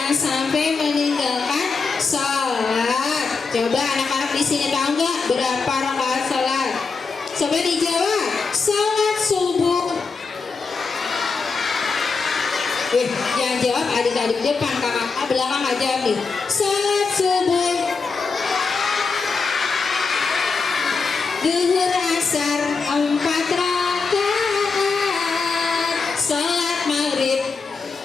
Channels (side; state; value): right; quieter; 4.7 dB